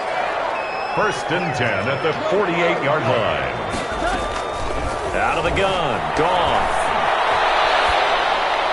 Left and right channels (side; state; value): both; identical; correlation 1.00